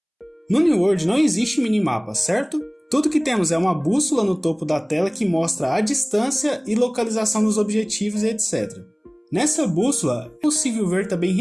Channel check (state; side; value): identical; both; correlation 1.00